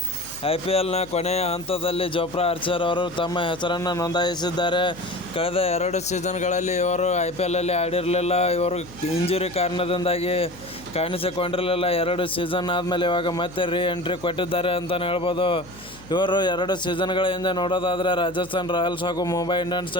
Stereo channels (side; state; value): left; noise; hum, 21 dB below the sound